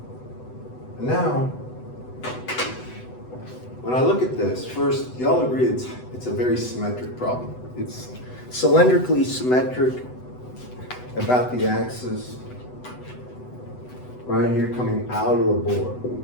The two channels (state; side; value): late; right; 8.0 ms